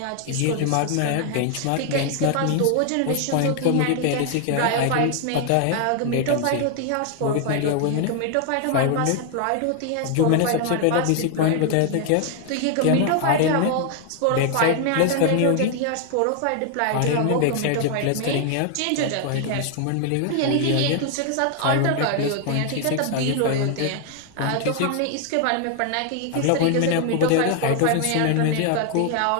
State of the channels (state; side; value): different; both; correlation 0.00